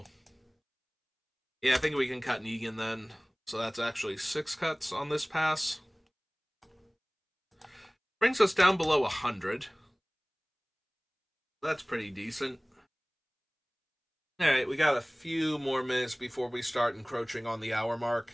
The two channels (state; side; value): identical; both; correlation 1.00